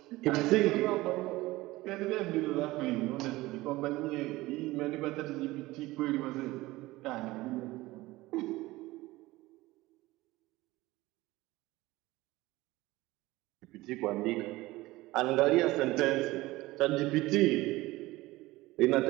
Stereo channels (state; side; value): quieter; left; 19.1 dB